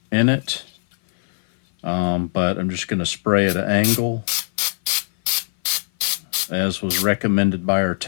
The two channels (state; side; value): silent; right; 58 dB below the other